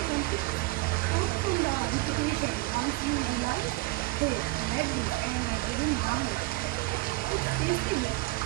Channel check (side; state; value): left; quieter; 21.5 dB